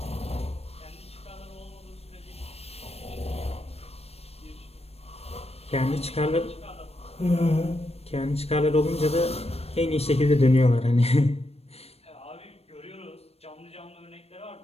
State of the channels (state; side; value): late; right; 0.29 ms